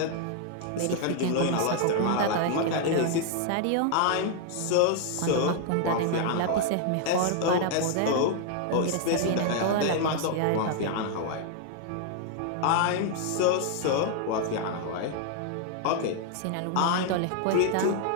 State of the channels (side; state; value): both; different; correlation 0.00